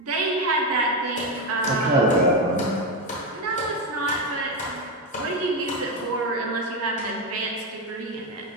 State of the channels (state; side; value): normal; both; correlation 0.10